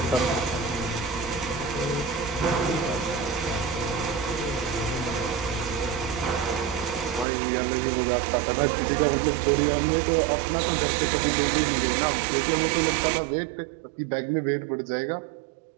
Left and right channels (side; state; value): left; drops out; at 7.2 s